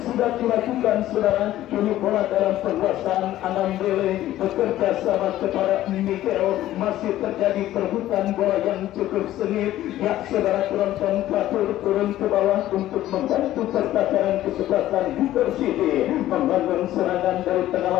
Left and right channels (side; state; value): right; quieter; 14.0 dB